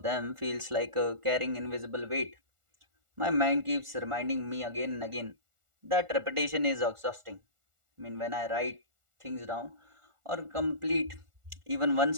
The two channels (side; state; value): left; late; 1.4 ms